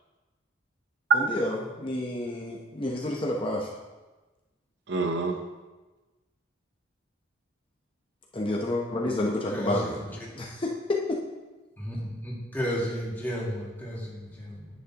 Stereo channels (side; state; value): both; normal; correlation 0.56